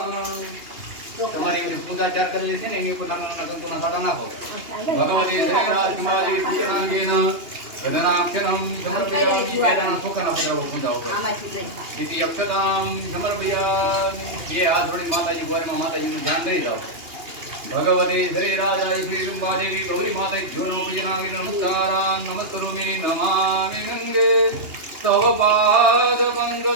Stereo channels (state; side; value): late; left; 2.8 ms